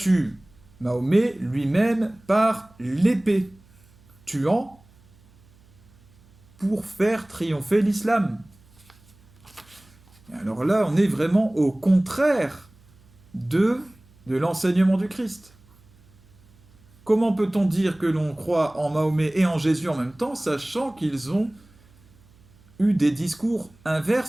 Mahomet lui-même par l'épée, tuant pour faire triompher l'islam. Alors là, on est vraiment au contraire de l'enseignement du Christ. Comment peut-on dire que l'on croit en Mahomet et en Jésus en même temps, sachant qu'ils ont eu des discours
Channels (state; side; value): noise; right; hum, 29 dB below the sound